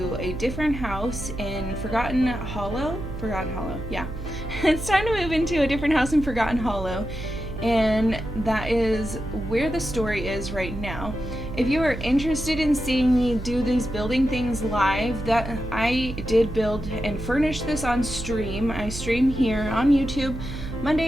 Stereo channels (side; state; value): right; noise; hum, 9 dB below the sound